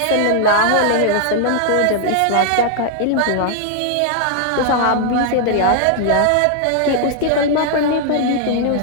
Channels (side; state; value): both; different; correlation 0.00